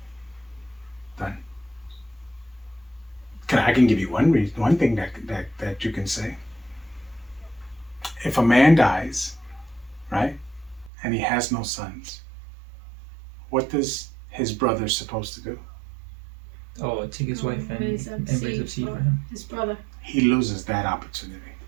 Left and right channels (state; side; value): drops out; left; at 10.9 s